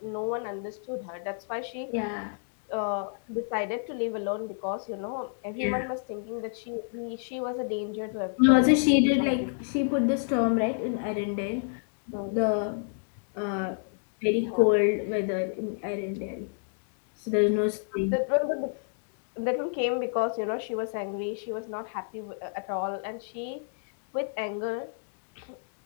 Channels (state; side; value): silent; right; digital silence